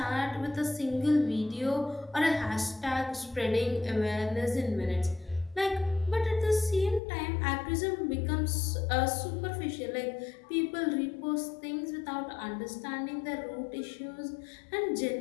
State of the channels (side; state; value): right; drops out; at 7.0 s